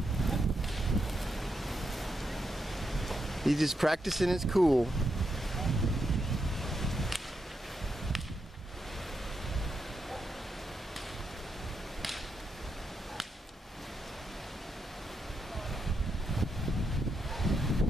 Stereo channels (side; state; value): both; normal; correlation 0.83